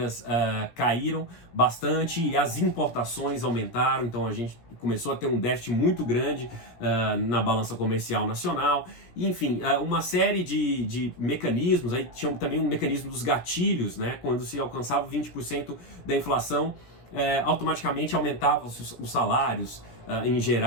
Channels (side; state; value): right; late; 17 ms